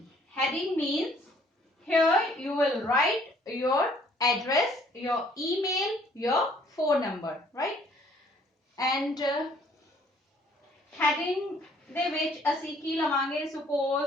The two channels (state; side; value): normal; both; correlation 0.60